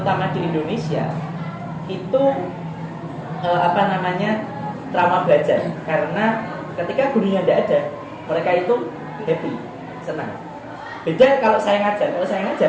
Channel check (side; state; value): both; identical; correlation 1.00